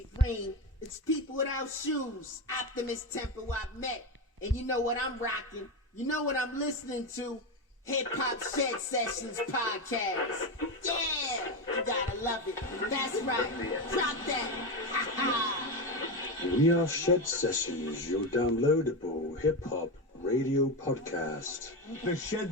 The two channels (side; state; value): both; normal; correlation 0.15